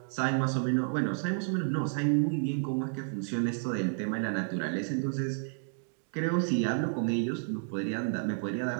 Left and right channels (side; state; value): left; silent; digital silence